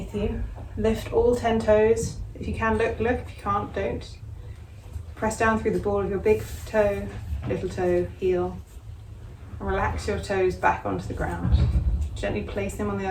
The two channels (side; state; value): both; identical; correlation 1.00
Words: you. Lift all 10 toes. If you can, look. If you can't, don't. Press down through the ball of your big toe, little toe, heel. And relax your toes back onto the ground. Gently place them on the